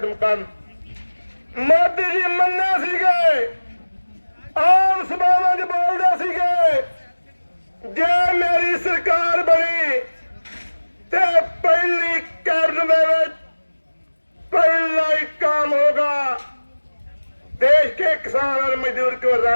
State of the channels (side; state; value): both; inverted; correlation -1.00